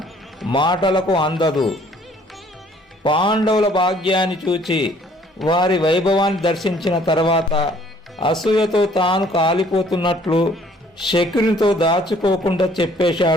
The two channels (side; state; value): both; normal; correlation 0.59